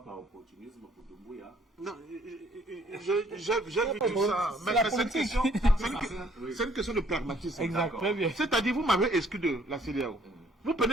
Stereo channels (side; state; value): both; normal; correlation 0.61